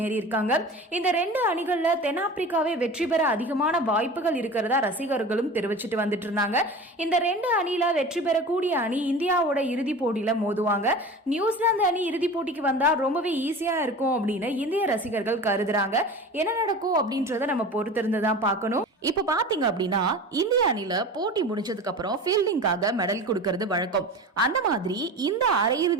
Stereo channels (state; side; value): normal; both; correlation 0.35